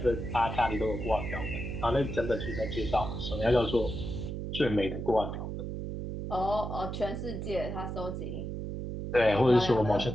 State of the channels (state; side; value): noise; right; hum, 5 dB below the sound